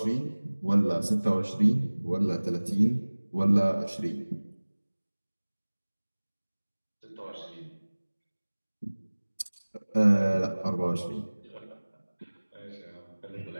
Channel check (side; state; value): both; inverted; correlation -1.00